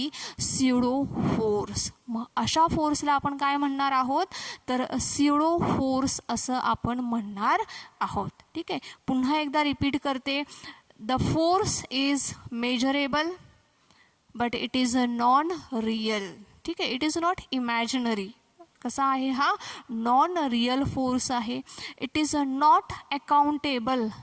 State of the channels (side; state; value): both; identical; correlation 1.00